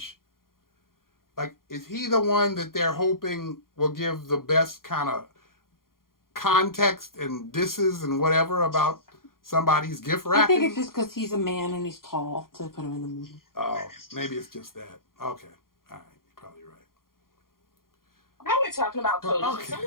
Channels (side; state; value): right; late; 0.91 ms